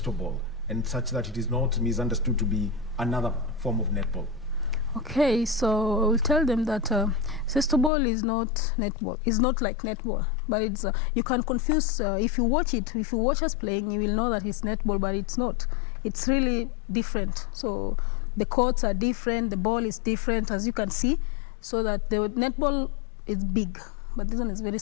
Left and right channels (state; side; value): drops out; right; at 7.9 s